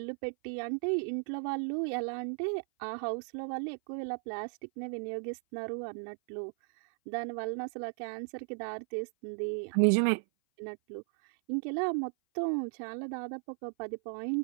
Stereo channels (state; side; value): silent; left; 54 dB below the other